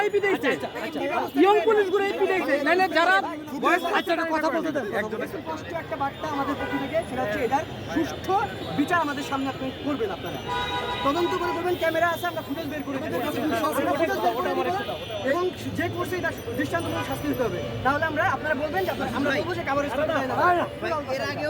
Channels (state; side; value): identical; both; correlation 1.00